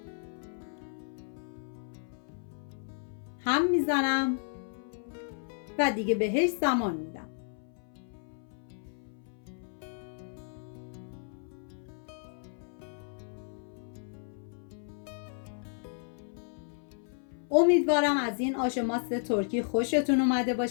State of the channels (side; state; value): right; silent; 56 dB below the other